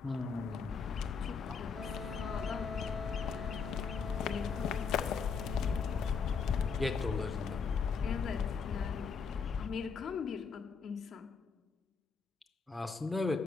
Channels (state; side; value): quieter; right; 5.6 dB